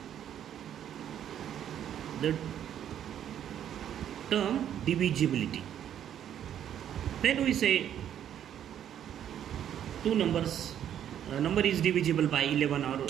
the term divisibility. When we say two numbers number is divisible by 11 or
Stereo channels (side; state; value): left; quieter; 10.1 dB